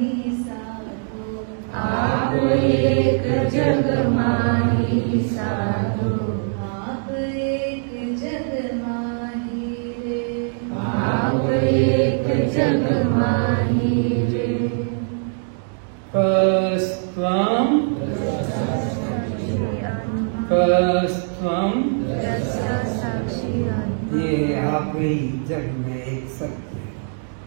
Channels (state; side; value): silent; left; 64 dB below the other